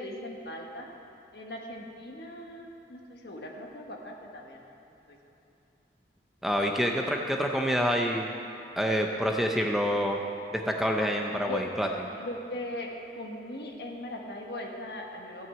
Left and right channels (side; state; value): both; normal; correlation 0.65